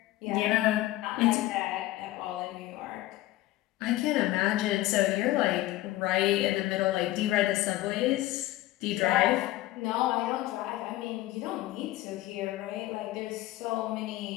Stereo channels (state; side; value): quieter; right; 16.5 dB